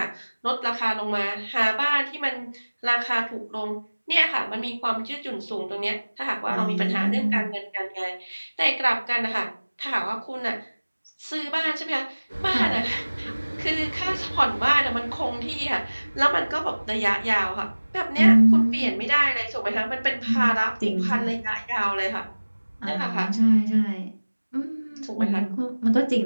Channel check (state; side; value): inverted; both; correlation -1.00